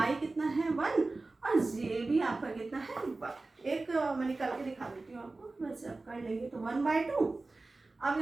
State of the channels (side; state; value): left; quieter; 3.4 dB